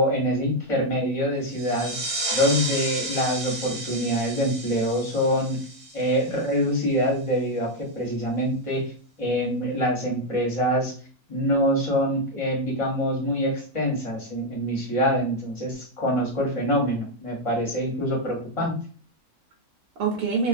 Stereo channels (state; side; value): normal; both; correlation 0.01